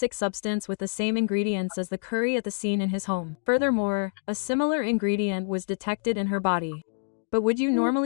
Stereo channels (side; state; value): right; silent; digital silence